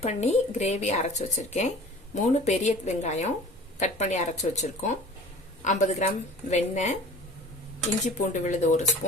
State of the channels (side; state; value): both; normal; correlation 0.44